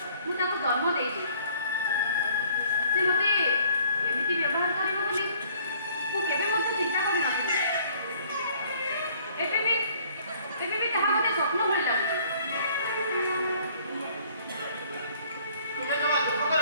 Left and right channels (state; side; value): inverted; both; correlation -0.58